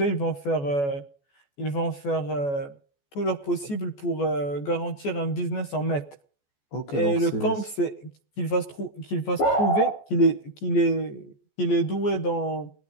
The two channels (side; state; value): right; late; 14 ms